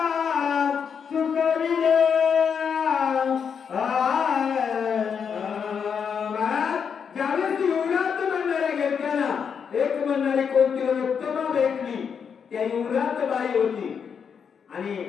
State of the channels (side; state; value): right; quieter; 6.8 dB